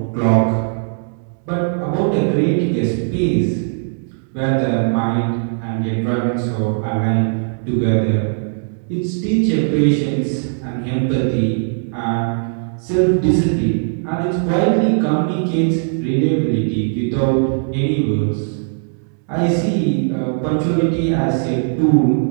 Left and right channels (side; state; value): left; silent; digital silence